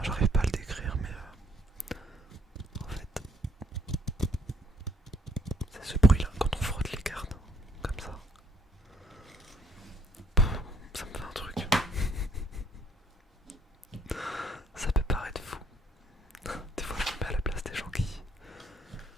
j'arrive pas à le décrire, mais en fait, c'est ce bruit-là quand on frotte les cartes, comme ça. Pff, ça me fait un truc. Ça peut paraître fou. Des fois, je me mets à la place des gens qui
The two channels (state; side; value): normal; both; correlation 0.64